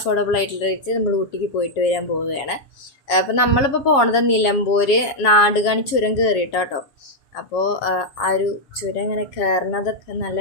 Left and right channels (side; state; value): right; late; 7.3 ms